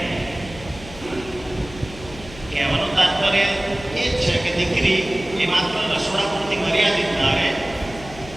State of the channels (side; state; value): left; noise; hum, 16 dB below the sound